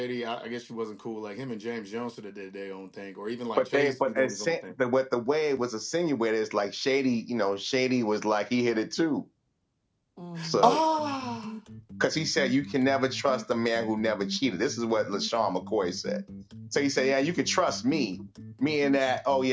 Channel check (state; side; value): identical; both; correlation 1.00